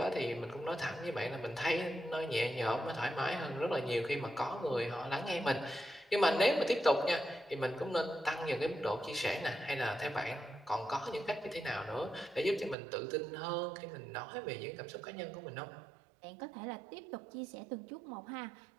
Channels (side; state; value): left; drops out; at 12.8 s